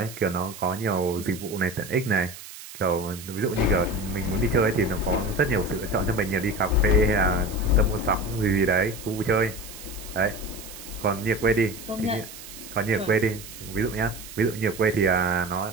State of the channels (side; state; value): right; noise; hiss, 14 dB below the sound